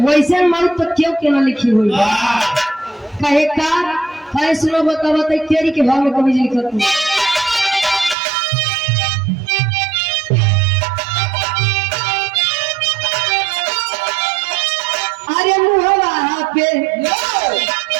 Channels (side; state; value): left; drops out; at 8.2 s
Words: वैसे मौत तो क्यों केना लिखी हुई कहे का कहे सुनो बता बता तेरी के भाव में कभी लिखत है अरे मुहवा पे